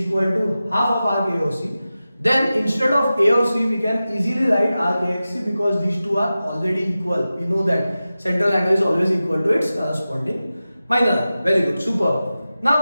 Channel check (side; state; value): both; inverted; correlation -0.94